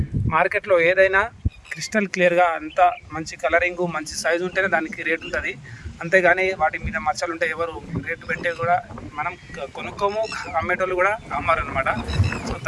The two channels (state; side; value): identical; both; correlation 1.00